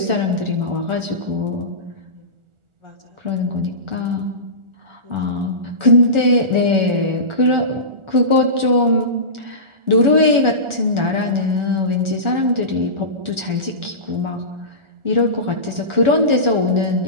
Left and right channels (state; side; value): late; left; 1.4 ms